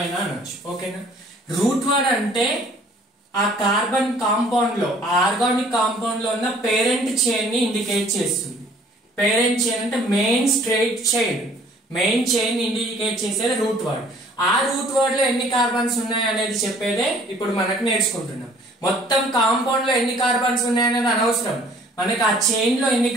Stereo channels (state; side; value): normal; both; correlation 0.56